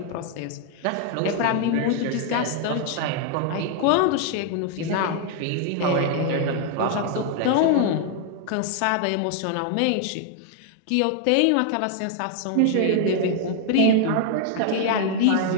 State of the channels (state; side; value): different; both; correlation 0.00